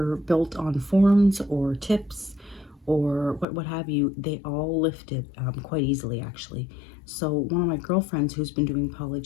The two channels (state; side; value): drops out; right; at 3.5 s